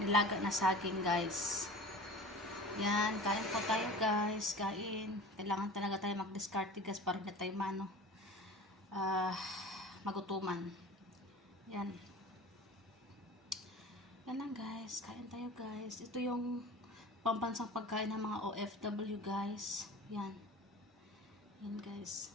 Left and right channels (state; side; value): normal; both; correlation 0.38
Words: na saging guys. Yan, kain po tayo guys. Kain. Kailangan talaga tayo mag-discard guys para hindi tayo magutuman. Yan. Yan lang guys. Kain tayo guys. Ito yung pambansang pagkain ng mga OFW guys. Yan. Yan guys.